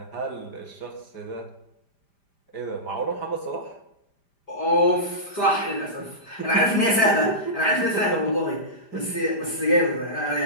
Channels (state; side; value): late; right; 5.0 ms